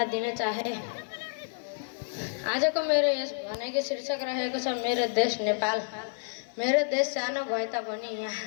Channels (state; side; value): silent; right; digital silence